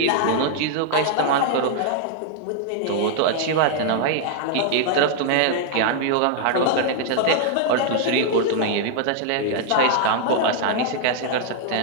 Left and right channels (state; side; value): different; both; correlation 0.00